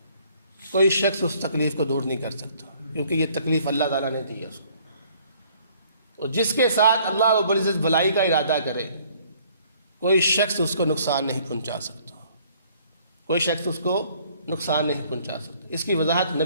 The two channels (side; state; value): both; inverted; correlation -0.60